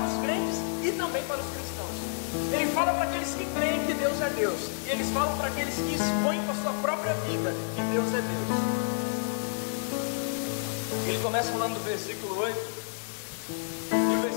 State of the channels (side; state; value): right; silent; digital silence